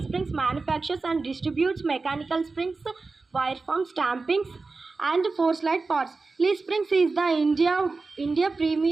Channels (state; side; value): quieter; left; 3.9 dB